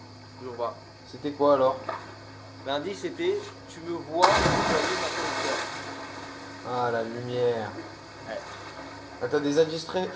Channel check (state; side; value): identical; both; correlation 1.00